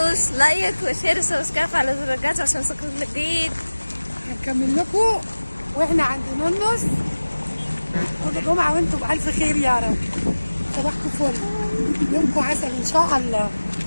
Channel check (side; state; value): both; inverted; correlation -1.00